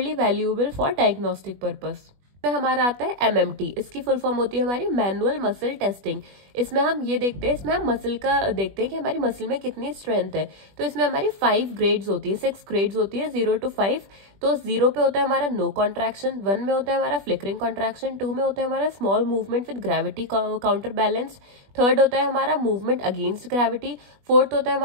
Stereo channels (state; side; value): late; left; 20 ms